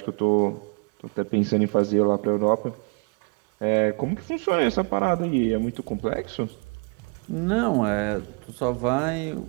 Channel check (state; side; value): quieter; left; 35.3 dB